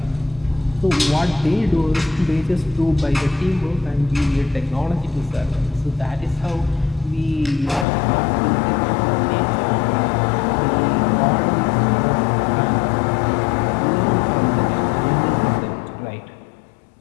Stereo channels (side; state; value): right; drops out; at 7.9 s